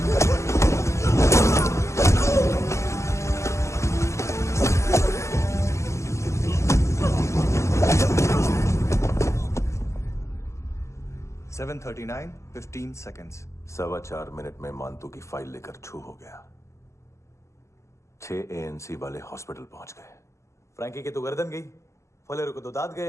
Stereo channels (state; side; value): late; right; 0.14 ms